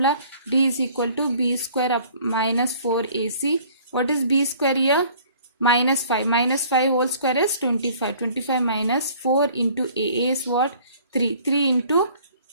D is equal to b square up minus 4ac. What is b square here? Minus 5. Minus 5 whole square is 25. 25 minus 4 into a is what? 3. 3 into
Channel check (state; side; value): inverted; both; correlation -0.54